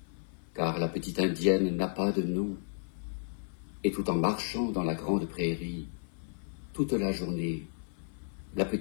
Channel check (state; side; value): silent; right; 56 dB below the other